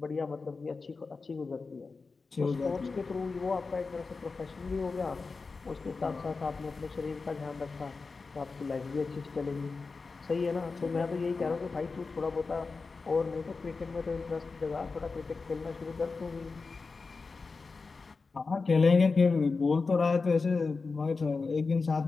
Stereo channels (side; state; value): right; quieter; 4.3 dB